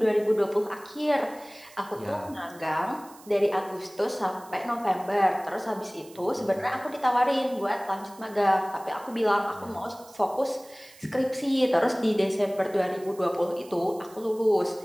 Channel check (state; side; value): noise; right; hiss, 23 dB below the sound